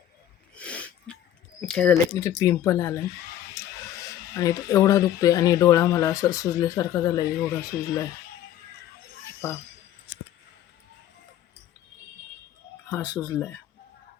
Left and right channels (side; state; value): right; quieter; 11.5 dB